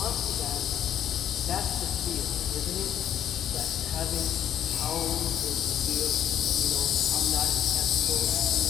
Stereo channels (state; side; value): quieter; right; 10.2 dB